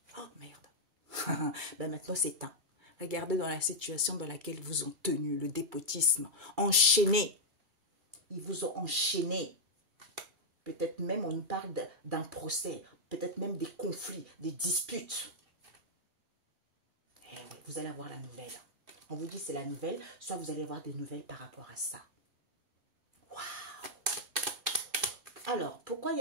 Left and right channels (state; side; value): late; left; 2.3 ms